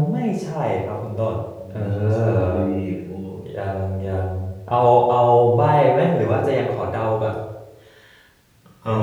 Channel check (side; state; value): both; identical; correlation 1.00